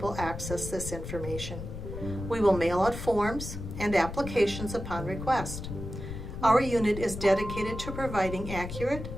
access this information. We will mail out forms and applications upon request. Our unit is dedicated to providing accurate,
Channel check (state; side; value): noise; left; rumble, 8 dB below the sound